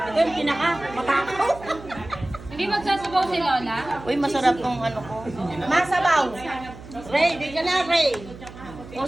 yung pinaka-matakaw. Hindi magsasabaw si Lola? Uy, masarap tong ano ko. Masabaw. Ray, di ka na, Ray. O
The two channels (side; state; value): right; noise; hum, 16 dB below the sound